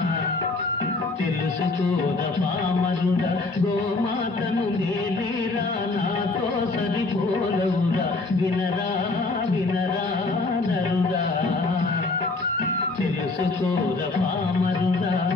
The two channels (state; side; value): quieter; right; 3.4 dB